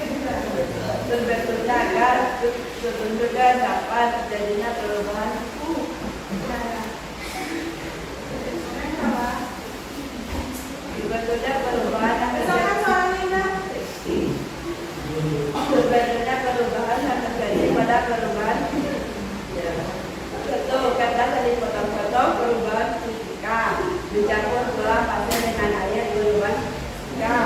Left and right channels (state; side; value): identical; both; correlation 1.00